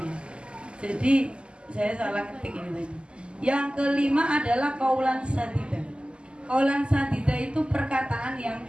ya. Jadi saya salah ketik ini tadi. Yang kelima adalah qaulan sadida. Qaulan sadida itu perkataan yang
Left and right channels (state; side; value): late; left; 0.051 ms